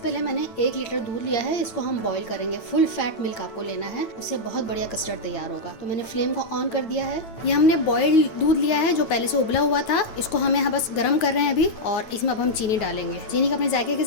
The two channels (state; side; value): late; right; 9.0 ms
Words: मैंने 1 लीटर दूध लिया है, इसको हम बॉईल करेंगे। फुल फैट मिल्क आपको लेना है, उससे बहुत बढ़िया कस्टर्ड तैयार होगा। तो मैंने फ्लेम को ऑन कर दिया है। ये हमने बॉइल्ड दूध लिया है जो पहले से उबला हुआ था, इसको हम यहाँ बस गर्म कर रहे हैं अभी। और इसमें अब हम चीनी डालेंगे। चीनी को अपने जायके के